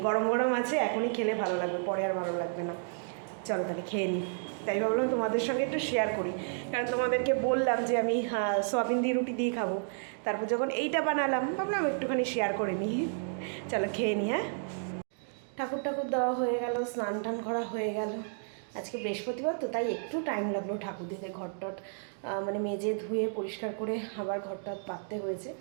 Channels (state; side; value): silent; left; digital silence